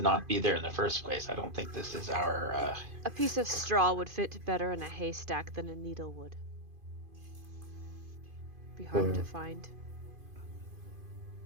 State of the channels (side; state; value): left; late; 2.5 ms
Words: not be there in the first place. I don't think this is our. A piece of straw would fit better in a haystack than a needle would. Be hard to find.